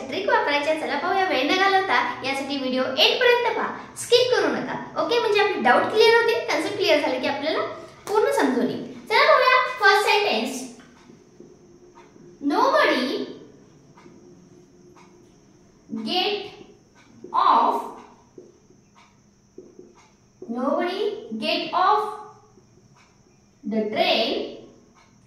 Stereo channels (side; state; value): both; identical; correlation 1.00